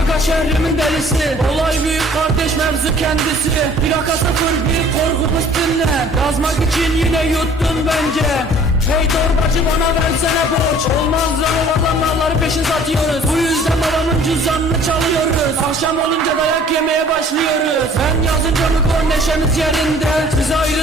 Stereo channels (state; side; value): normal; both; correlation 0.52